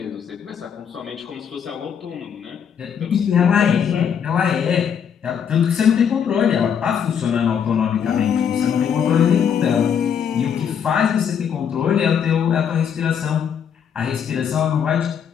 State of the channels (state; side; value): quieter; right; 7.8 dB